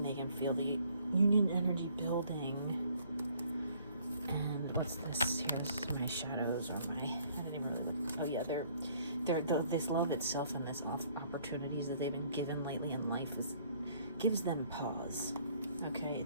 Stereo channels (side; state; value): both; inverted; correlation -0.61